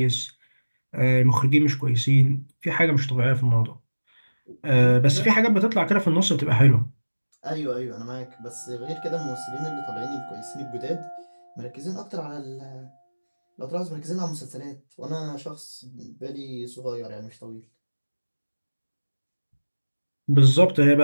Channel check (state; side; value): inverted; both; correlation -1.00